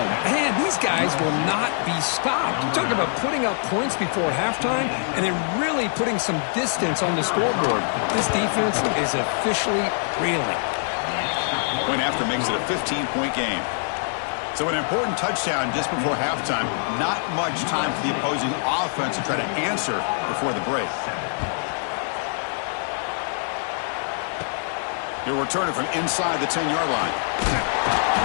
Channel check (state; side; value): silent; right; digital silence